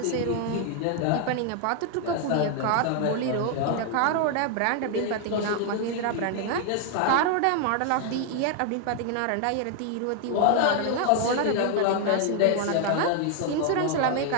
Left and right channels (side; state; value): both; different; correlation 0.00